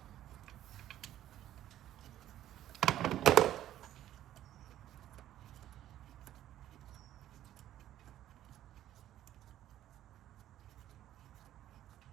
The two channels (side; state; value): left; quieter; 12.5 dB